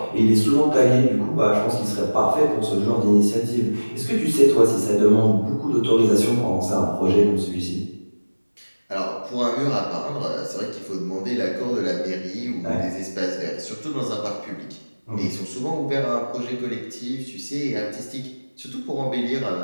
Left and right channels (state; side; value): inverted; both; correlation -1.00